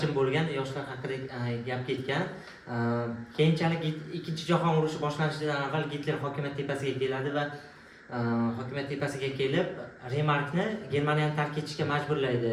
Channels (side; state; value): both; identical; correlation 1.00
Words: bo'lgan yoshlar haqida gap ketgan. Keyinchalik Ikkinchi jahon urushi boshlanishidan avval Gitler hokimiyat tepasiga keladi va hokimiyat tepasiga kelib Remarkni Germaniyani tark etishga